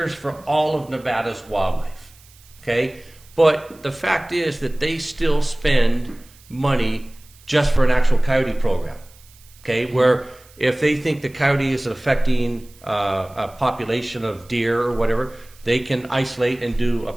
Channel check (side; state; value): right; noise; hiss, 26 dB below the sound